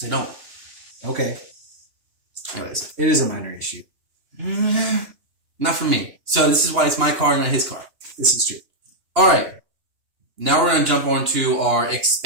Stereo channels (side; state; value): left; late; 2.9 ms